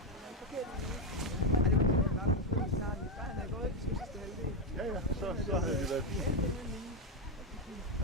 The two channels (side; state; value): both; normal; correlation 0.07